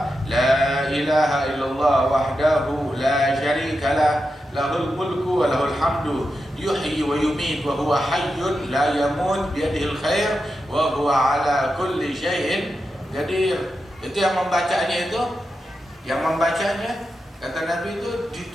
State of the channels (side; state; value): both; normal; correlation 0.89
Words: la ilaha illallah wahdahu la syarikalah lahul mulku wa lahul hamdu yuhyi wa yumit wa huwa hayyun la yamut biyadihil khair wa huwa ala kulli syai'in qadir. Itu yang membacanya kata Nabi itu